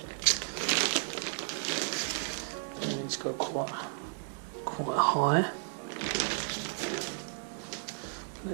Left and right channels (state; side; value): silent; left; digital silence